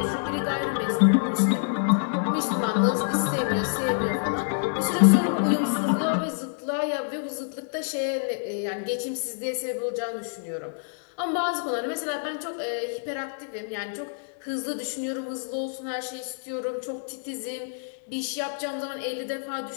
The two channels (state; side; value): silent; right; digital silence